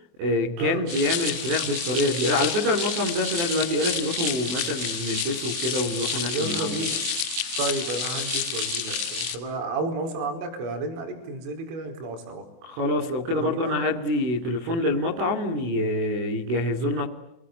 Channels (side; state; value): left; late; 24 ms